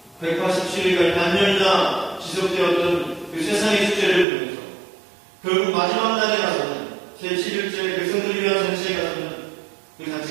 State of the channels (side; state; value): left; drops out; at 4.2 s